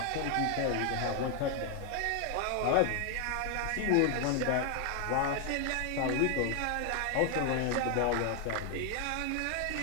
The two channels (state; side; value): different; both; correlation 0.00